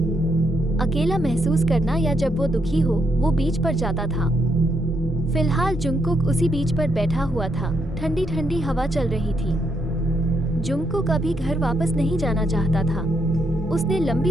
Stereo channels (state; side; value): normal; both; correlation 0.77